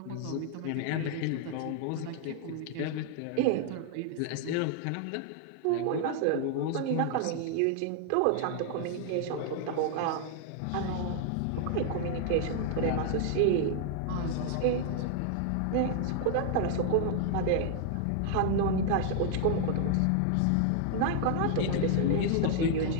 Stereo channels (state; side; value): different; both; correlation 0.00